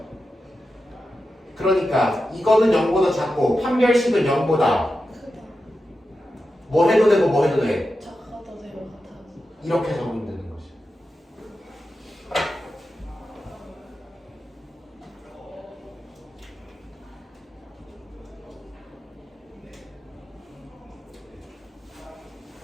그러니까 이거는 0보다 작고 판별식은 0보다 뭐 해도 되고 뭐 해도 돼. 작아도 되고 같아도. 이렇게 적으면 되는 거지.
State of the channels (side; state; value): both; normal; correlation 0.90